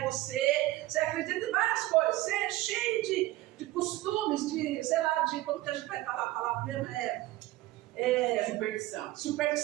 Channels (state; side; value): quieter; left; 17.4 dB